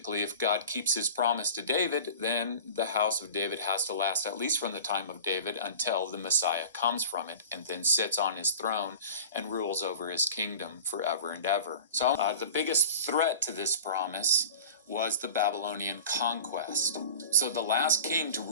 if God keeps his promise to David, then the house of David has to last at least from the time of David until the Messiah comes from it and then sits on his throne and rules over his kingdom forever and ever. So the biggest threat to this promise was the Babylonian conquest. So the last king to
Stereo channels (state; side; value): inverted; both; correlation -0.39